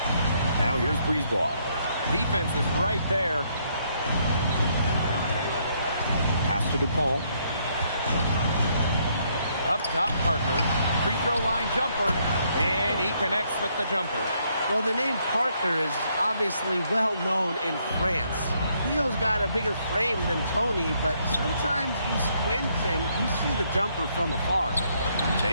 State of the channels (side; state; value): both; inverted; correlation -0.71